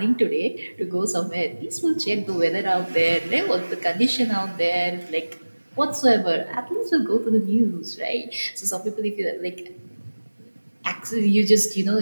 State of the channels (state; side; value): inverted; both; correlation -1.00